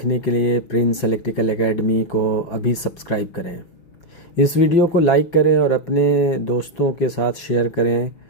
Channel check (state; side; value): late; right; 5.9 ms